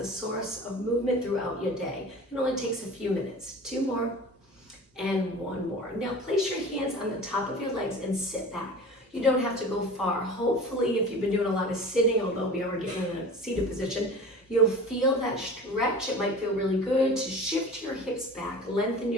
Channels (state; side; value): normal; both; correlation 0.37